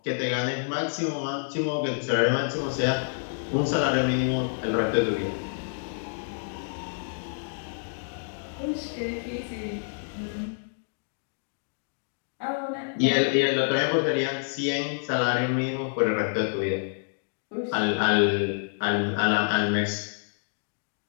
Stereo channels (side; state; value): right; silent; digital silence